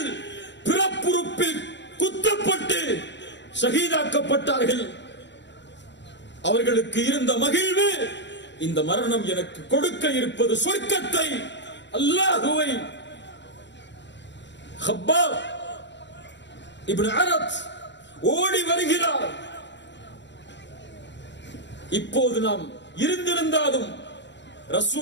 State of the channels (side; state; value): right; late; 0.52 ms